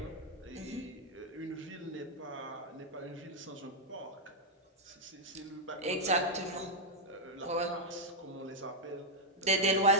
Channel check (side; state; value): both; normal; correlation -0.02